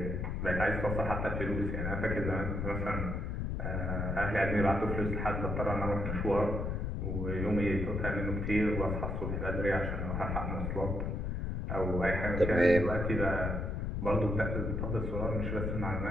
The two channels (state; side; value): noise; left; rumble, 2 dB below the sound